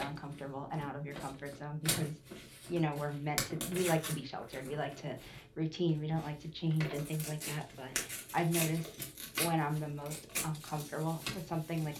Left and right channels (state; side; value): identical; both; correlation 1.00